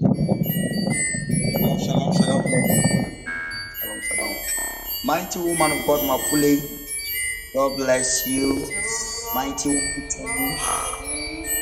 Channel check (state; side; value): identical; both; correlation 1.00